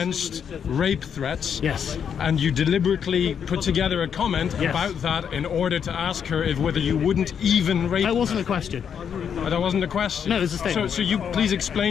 rape threats. Yes. And you deliberately put together a comment about that in order to ask her whether you wouldn't even rape her. That wasn't a question. That wasn't a question. No, it was a statement. So you please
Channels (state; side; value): quieter; right; 7.7 dB